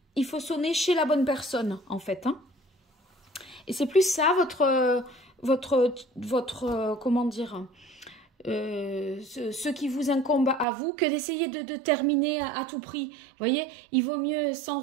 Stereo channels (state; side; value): drops out; left; at 10.7 s